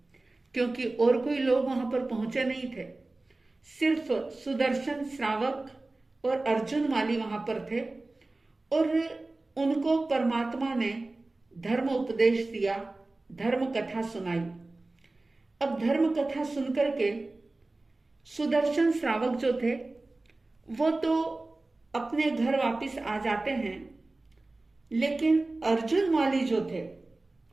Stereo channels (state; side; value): quieter; left; 3.1 dB